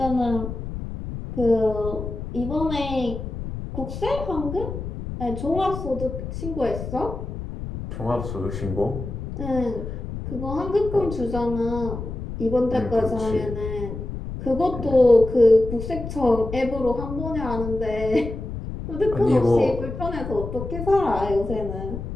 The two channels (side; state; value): left; noise; rumble, 7 dB below the sound